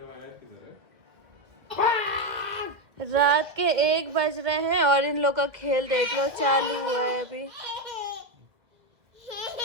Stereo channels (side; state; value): left; late; 2.0 ms